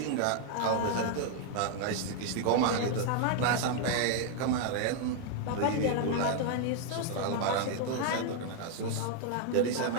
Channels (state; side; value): different; both; correlation 0.00